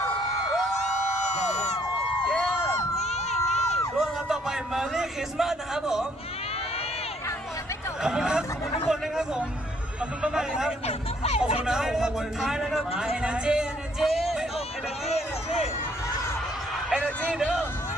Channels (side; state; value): both; normal; correlation 0.66